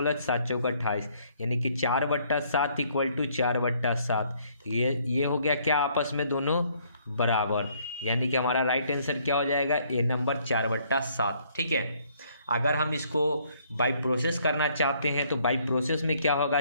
7 चौका 28, यानी कि 4/7 इक्वल टू 4/7। ये हो गया क्या, आपस में दोनों बराबर, यानी कि हमारा राइट आंसर क्या हो जाएगा, ए नंबर 4/7। ठीक है, अगर हम इसको बाई प्रोसेस करना चाहते हैं तो बाई प्रोसेस में क्या होगा,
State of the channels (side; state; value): both; inverted; correlation -0.65